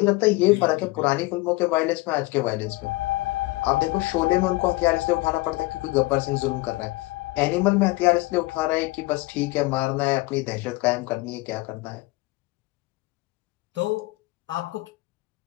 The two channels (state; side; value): quieter; right; 21.2 dB